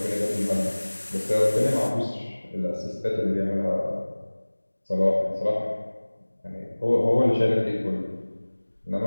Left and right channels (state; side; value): inverted; both; correlation -1.00